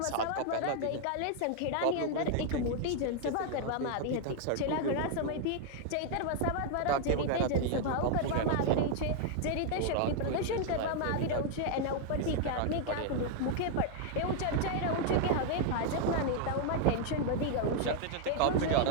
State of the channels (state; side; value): different; both; correlation 0.00